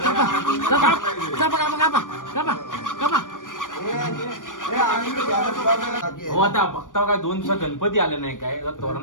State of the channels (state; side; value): late; right; 0.88 ms